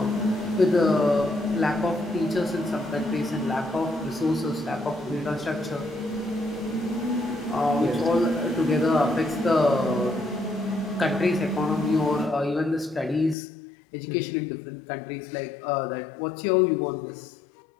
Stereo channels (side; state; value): right; drops out; at 13.4 s